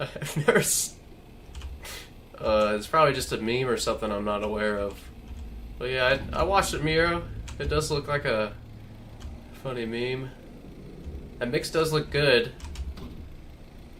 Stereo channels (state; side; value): identical; both; correlation 1.00